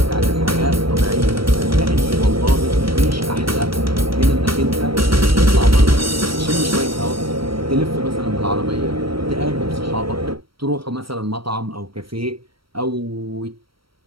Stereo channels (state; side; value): late; left; 0.75 ms